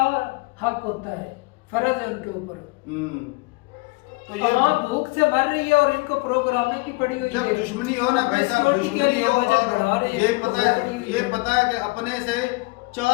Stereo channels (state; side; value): quieter; right; 25.6 dB